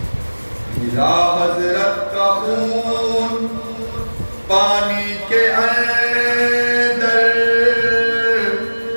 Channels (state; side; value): inverted; both; correlation -1.00